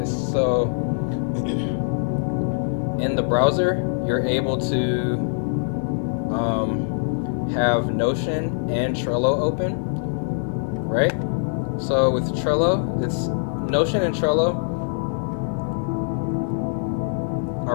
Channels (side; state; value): right; silent; digital silence